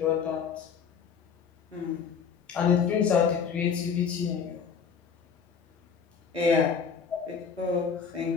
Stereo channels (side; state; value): right; quieter; 6.4 dB